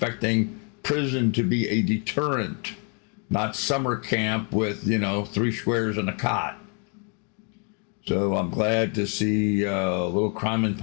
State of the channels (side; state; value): right; quieter; 37.8 dB